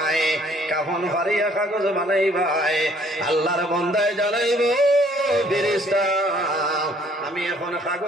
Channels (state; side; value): normal; both; correlation 0.61